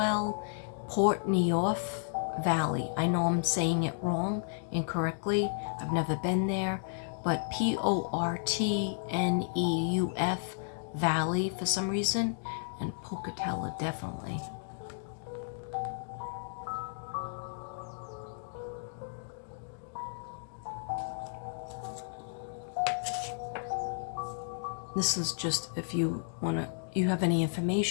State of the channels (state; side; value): silent; right; digital silence